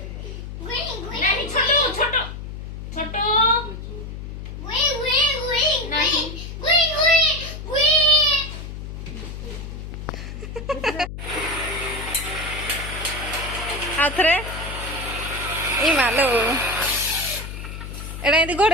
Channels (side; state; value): left; noise; hum, 9 dB below the sound